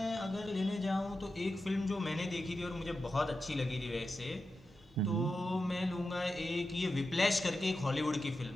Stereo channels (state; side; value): normal; both; correlation 0.91